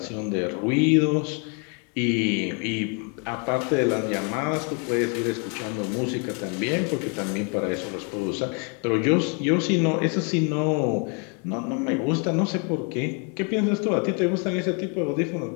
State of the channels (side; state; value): right; quieter; 35.8 dB